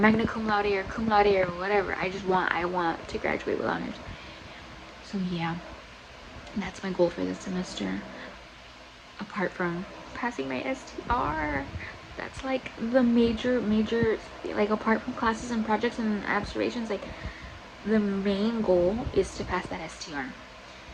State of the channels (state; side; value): identical; both; correlation 1.00